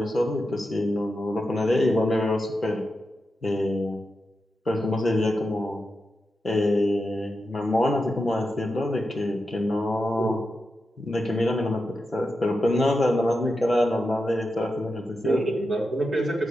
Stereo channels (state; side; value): normal; both; correlation 0.89